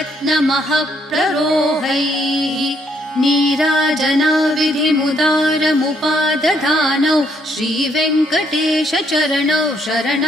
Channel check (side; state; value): both; normal; correlation 0.71